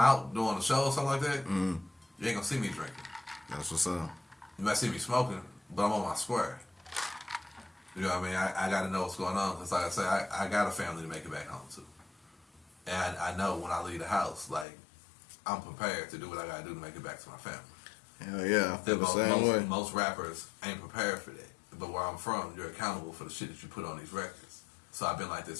doing a show or something like that, you ain't gonna see me drinking. That's what's up. You might see me smoking, but I'm on my square. You know what I mean? I got to know what's going on. Because like I say, I got a family to make it back home to. And I know when I leave the house, like, I'm prepared to do what I got to do to make it back to my family. Hell yeah, I feel the same way. Most rappers ain't prepared for that. But where I'm from, you're accountable for the shit that you put on these records. So I've been like this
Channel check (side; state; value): right; drops out; at 14.7 s